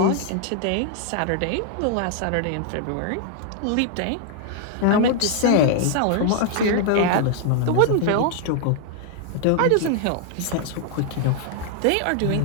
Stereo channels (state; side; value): different; both; correlation 0.00